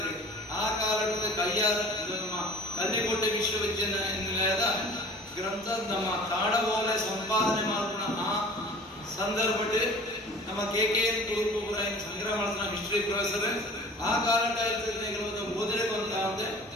ಆ ಕಾಲದ ಕೈಯಾರ ನಮ್ಮ ಕಲ್ಲಿಕೋಟೆ ವಿಶ್ವವಿದ್ಯಾನಿಲಯದ ಗ್ರಂಥ ನಮ್ಮ ತಾಡಬೋಲೆ ಸಂಪಾದನೆ ಮಾಡ್ಕೊಂಡ ಆ ಸಂದರ್ಭ ನಮ್ಮ KKN ತುಳುಕು ಸಂಗ್ರಹ ಮಾಡಿದ ಹಿಸ್ಟ್ರಿ ಪ್ರೊಫೆಸರ್ ಆ ಕಾಲದ ಓದಿನ ಬಂತ ಅಂದ್ರೆ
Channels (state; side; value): normal; both; correlation 0.44